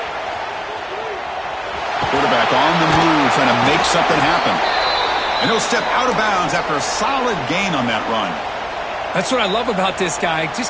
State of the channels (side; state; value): both; identical; correlation 1.00